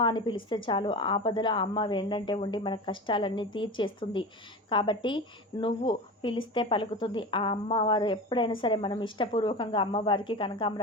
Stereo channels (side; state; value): both; normal; correlation 0.28